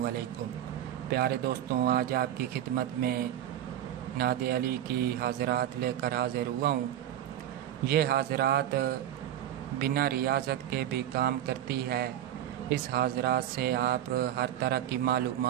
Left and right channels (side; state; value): left; quieter; 11.4 dB